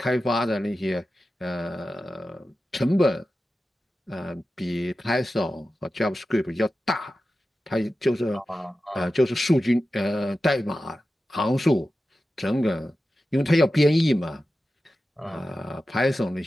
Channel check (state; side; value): normal; both; correlation 0.93